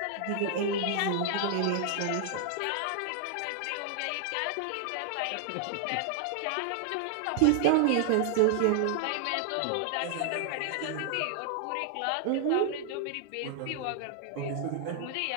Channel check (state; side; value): different; both; correlation 0.00